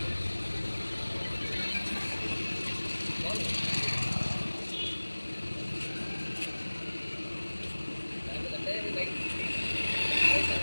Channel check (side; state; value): both; inverted; correlation -1.00